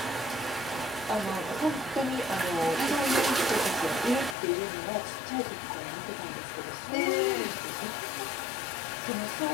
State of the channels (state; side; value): drops out; right; at 4.4 s